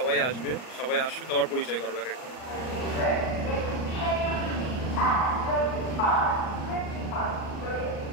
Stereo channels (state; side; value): late; right; 39 ms